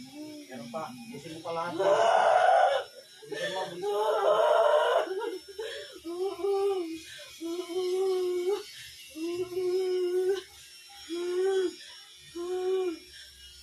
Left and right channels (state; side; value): identical; both; correlation 1.00